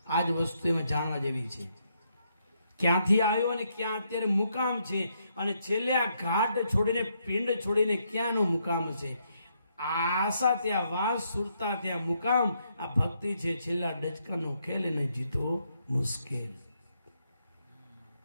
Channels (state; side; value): inverted; both; correlation -0.76